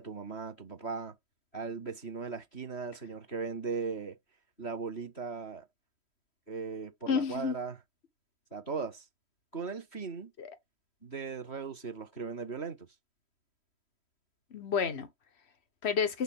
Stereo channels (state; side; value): late; right; 3.1 ms